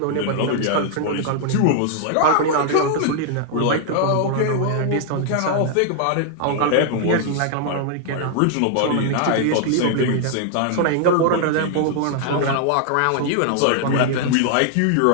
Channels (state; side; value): different; both; correlation 0.00